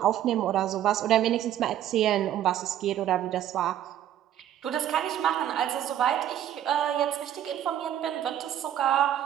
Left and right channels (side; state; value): left; quieter; 11.3 dB